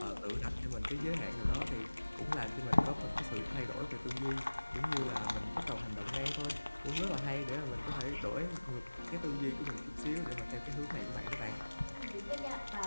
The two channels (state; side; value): inverted; both; correlation -1.00